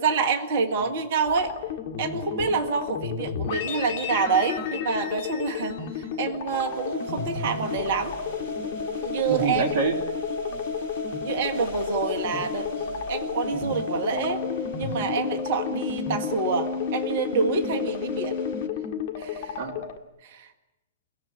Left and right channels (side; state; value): both; inverted; correlation -0.33